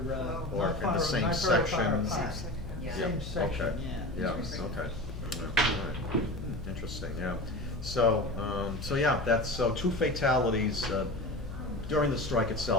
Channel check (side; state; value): left; noise; hum, 9 dB below the sound